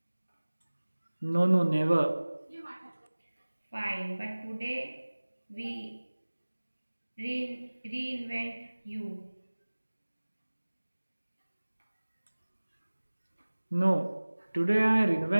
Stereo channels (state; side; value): inverted; both; correlation -1.00